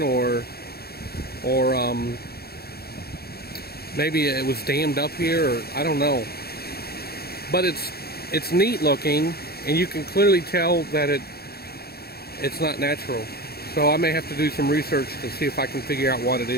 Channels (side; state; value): right; late; 0.46 ms